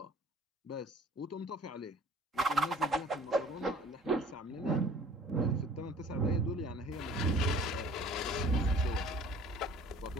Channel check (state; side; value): normal; both; correlation 0.50